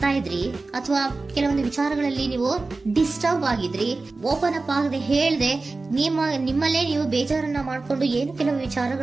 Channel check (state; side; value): quieter; left; 3.6 dB